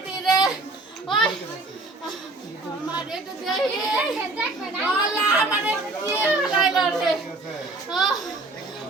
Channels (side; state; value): left; quieter; 3.1 dB